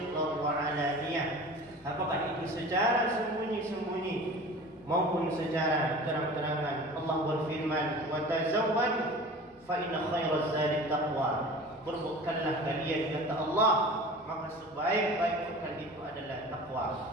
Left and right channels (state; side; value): normal; both; correlation 0.39